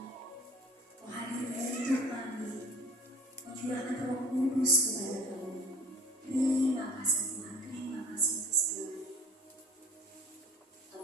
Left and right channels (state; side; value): normal; both; correlation 0.47